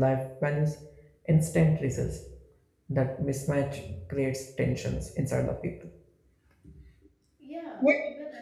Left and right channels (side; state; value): both; identical; correlation 1.00